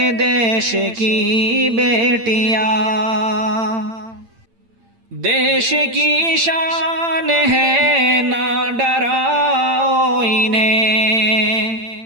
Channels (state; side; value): late; left; 8.8 ms